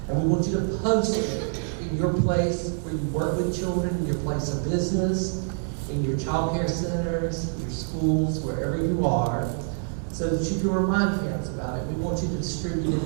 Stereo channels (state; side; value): silent; left; 61 dB below the other